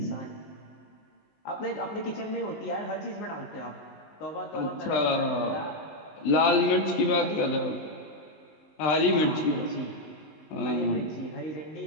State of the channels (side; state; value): right; late; 19 ms